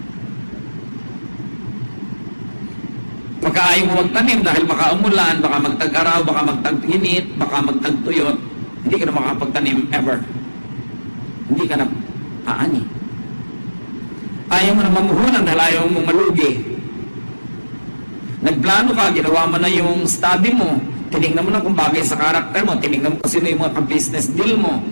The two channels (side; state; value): both; inverted; correlation -1.00